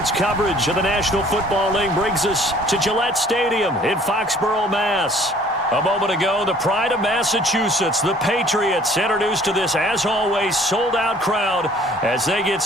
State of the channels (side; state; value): both; normal; correlation 0.55